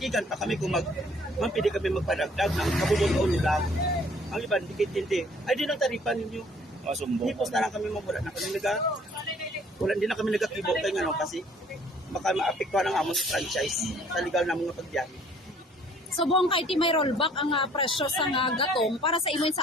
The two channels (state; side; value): normal; both; correlation 0.58